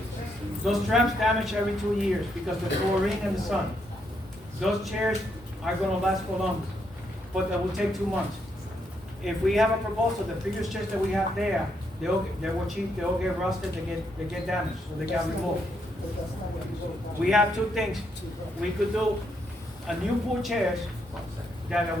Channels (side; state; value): both; normal; correlation 0.77